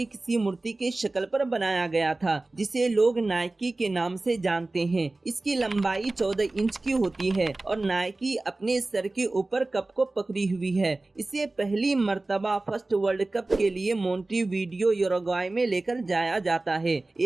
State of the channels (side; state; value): left; quieter; 3.0 dB